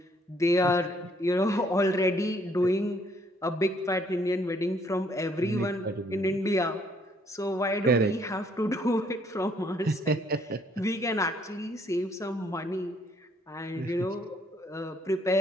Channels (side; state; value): both; normal; correlation 0.65